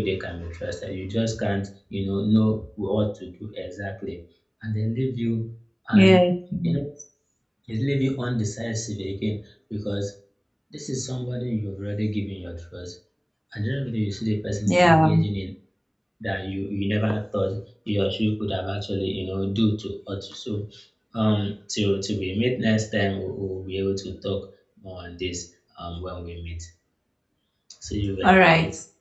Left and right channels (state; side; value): identical; both; correlation 1.00